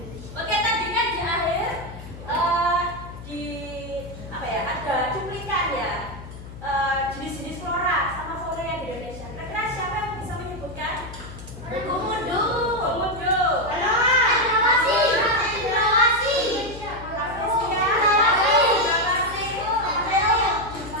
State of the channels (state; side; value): noise; left; hum, 14 dB below the sound